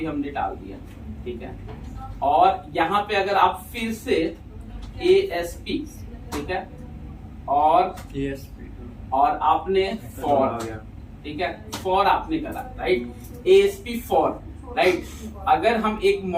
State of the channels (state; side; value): identical; both; correlation 1.00